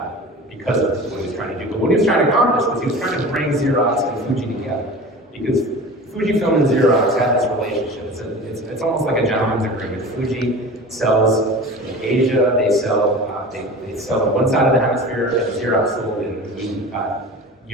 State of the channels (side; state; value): both; normal; correlation 0.36